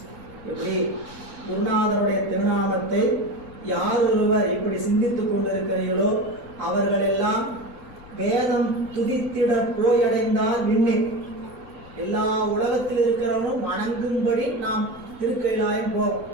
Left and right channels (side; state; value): left; noise; rumble, 21 dB below the sound